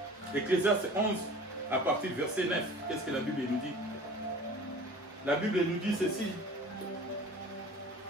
Ecclésiaste 11, à partir du verset 9. Qu'est-ce que la Bible nous dit? La Bible nous dit ceci.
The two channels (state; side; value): normal; both; correlation 0.43